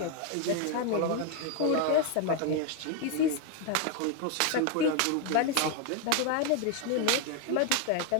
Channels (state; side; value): different; both; correlation 0.01